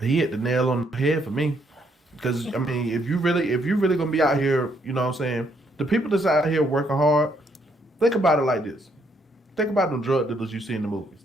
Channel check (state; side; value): normal; both; correlation 0.72